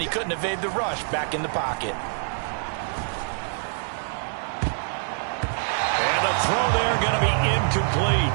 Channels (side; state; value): left; silent; digital silence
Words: he couldn't evade the rush back in the pocket. And the throw there going to be incomplete.